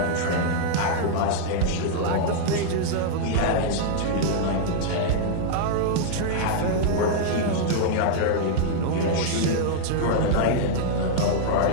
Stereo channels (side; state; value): both; different; correlation -0.01